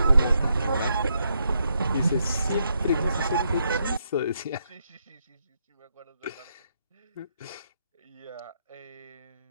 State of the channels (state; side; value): inverted; both; correlation -0.78